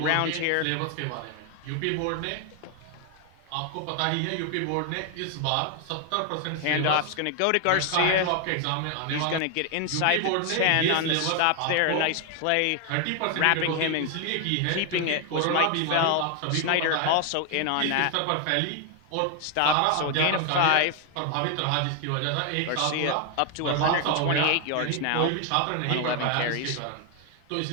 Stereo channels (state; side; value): different; both; correlation 0.00